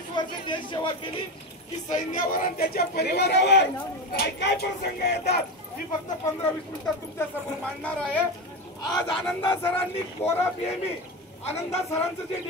वर्ष देश सेवा केली की सैन्यावर आणि त्याच्या परिवारावर काय काय प्रसंग येतात मी फक्त 15-20 मिनिटात तुमच्या समोर मांडणार आहे। आज आनंदा सरांनी कोरा पीएमई, आनंदा सरांचं जे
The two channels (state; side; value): normal; both; correlation 0.19